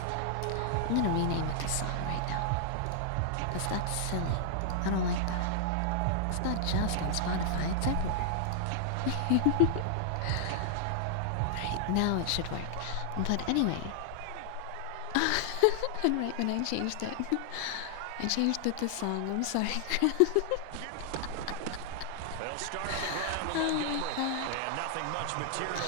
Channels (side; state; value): both; different; correlation 0.00